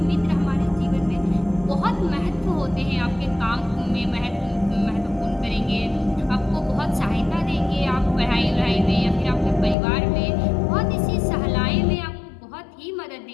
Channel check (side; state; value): right; drops out; at 9.8 s